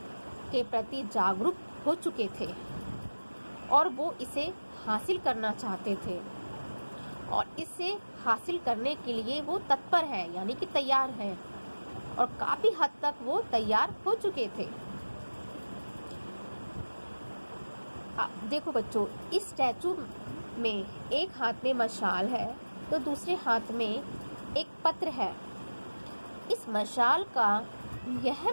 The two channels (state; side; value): inverted; both; correlation -1.00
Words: के प्रति जागरूक हो चुके थे और वो इसे हासिल करना चाहते थे, और इसे हासिल करने के लिए वो तत्पर हैं, यानी कि तैयार हैं, और काफ़ी हद तक वो तैयार हो चुके थे। देखो बच्चों, इस स्टैचू में एक हाथ में मशाल है तो दूसरे हाथ में एक पत्र है। इस मशाल का यह